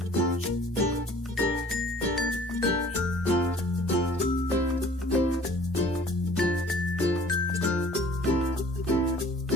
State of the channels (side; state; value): both; normal; correlation 0.51